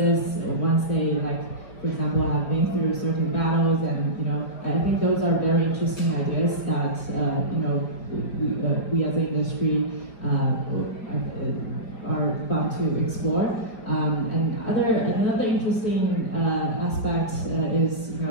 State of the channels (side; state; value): right; late; 4.8 ms